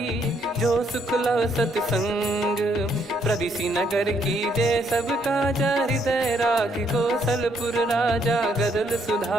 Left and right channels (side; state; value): both; normal; correlation 0.71